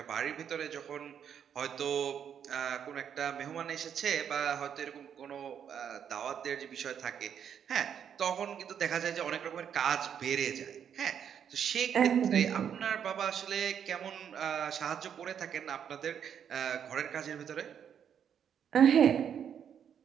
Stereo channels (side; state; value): left; quieter; 8.4 dB